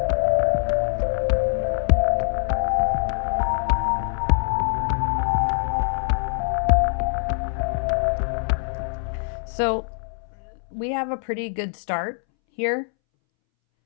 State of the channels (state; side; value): silent; right; 63 dB below the other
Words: So we have a pretty good start here.